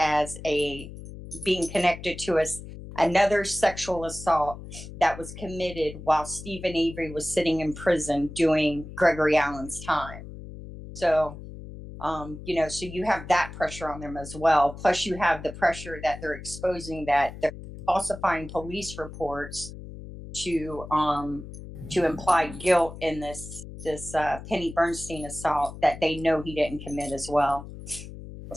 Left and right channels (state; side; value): noise; left; hum, 13 dB below the sound